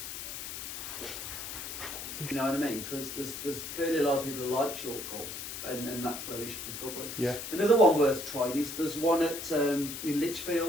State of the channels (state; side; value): noise; left; hiss, 7 dB below the sound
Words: You know what I mean? Because there's clearly a lot of people who like short golf, and that's where we should pick up on. Yeah. Another one worth trying is there's one at in